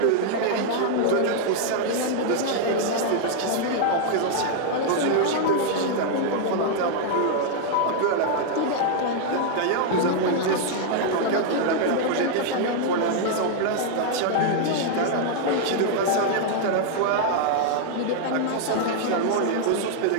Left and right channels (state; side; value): different; both; correlation 0.00